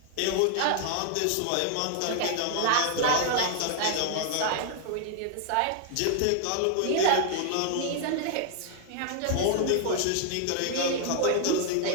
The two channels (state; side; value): different; both; correlation 0.00